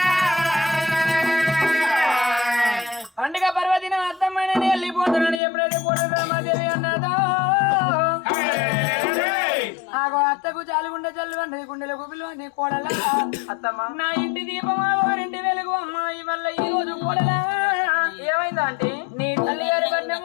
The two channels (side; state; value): right; drops out; at 5.4 s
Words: పండుగ పర్వదినం అత్తమ్మైన వెళ్ళిపోతున్నాను ఎప్పుడైతే కోడలు రామాదేవి అన్నదో ఆగో అత్తకు చాలుగుండె చల్లు అన్నది గుండెలకు పిలువని కోడల అత్తమ్మ నా ఇంటి దీపం వారింటి వెలుగు అమ్మాయి వల్ల ఈ రోజు కోడలా ఏమైందా ఆంటీ నీ తల్లి గారి